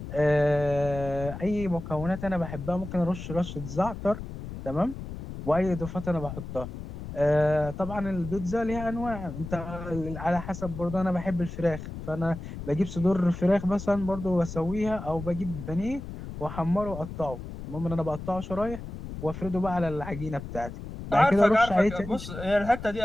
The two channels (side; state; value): left; noise; rumble, 10 dB below the sound